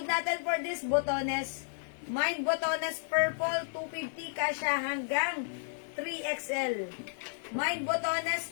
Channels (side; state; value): right; silent; 56 dB below the other